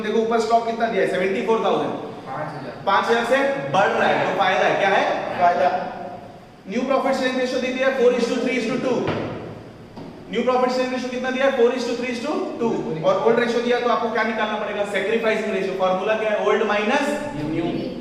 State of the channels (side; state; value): both; identical; correlation 1.00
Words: देखो ऊपर स्टॉक कितना दिया है 74,000, 5000 से बढ़ रहा है, तो फायदा है। क्या है? फायदा। न्यू प्रॉफिट शेयरिंग रेशियो दी है 4:3:2। न्यू प्रॉफिट शेयरिंग रेशियो कितना दिया है 4:3:2, और ओल्ड रेशियो दिया तो आपको क्या निकालना पड़ेगा? Sacrificing ratio. फार्मूला क्या है? Old minus new.